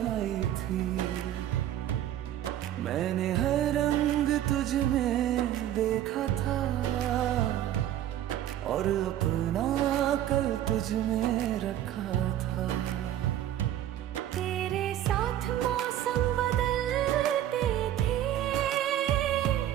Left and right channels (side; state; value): left; quieter; 12.0 dB